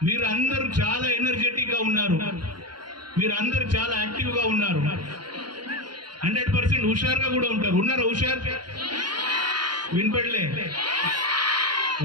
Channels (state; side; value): late; left; 0.71 ms